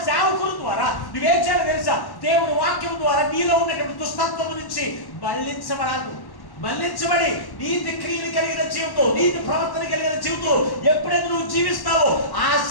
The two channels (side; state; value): right; late; 1.1 ms